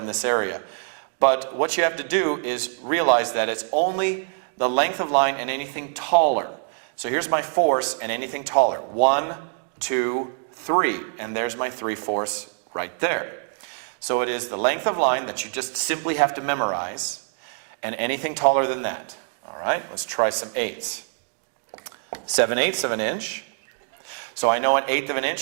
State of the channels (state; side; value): silent; left; digital silence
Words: this area. But what you have to do is realize that it's only the length of line and anything taller. So here's my fourths and anything taller. 1, 2, 3, and there's my 3/4 right there. So it is the length of line that you just simply have to memorize, and anything taller than that. All right, let's try some eighths. 7/8 of an inch. So I know 1/8 of an